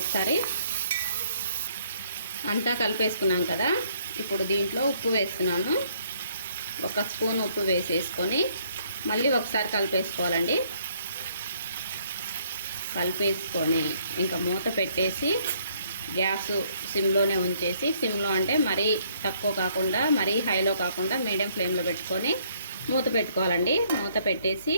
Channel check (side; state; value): both; inverted; correlation -0.66